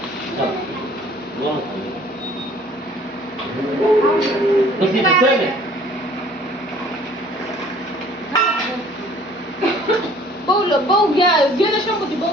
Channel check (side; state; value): both; normal; correlation 0.54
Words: बहु घ्या गेलं शंभूची